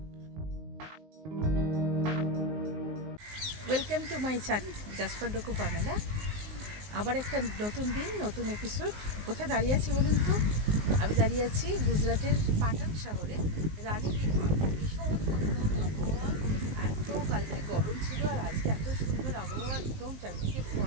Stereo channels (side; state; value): left; late; 19 ms